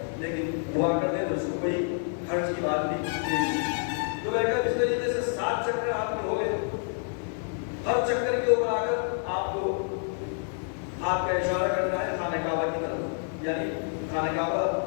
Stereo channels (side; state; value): right; silent; 56 dB below the other